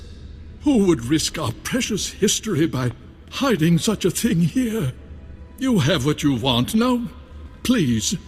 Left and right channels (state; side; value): identical; both; correlation 1.00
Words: Who would risk our precious history by hiding such a thing here? You have what you want. Now, please,